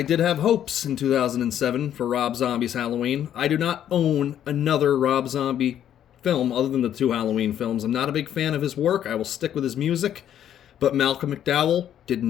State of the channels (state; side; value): quieter; right; 10.4 dB